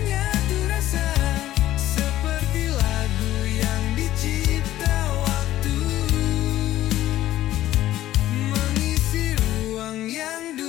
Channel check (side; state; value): right; quieter; 14.1 dB